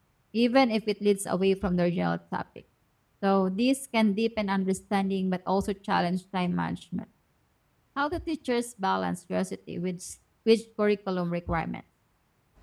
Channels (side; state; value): both; identical; correlation 1.00